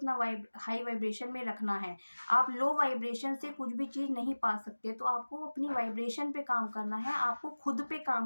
हाई वाइब्रेशन में रखना है। आप लो वाइब्रेशन से कुछ भी चीज़ नहीं पा सकते। तो आपको अपनी वाइब्रेशन पे काम करना है, आपको खुद पे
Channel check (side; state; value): both; inverted; correlation -1.00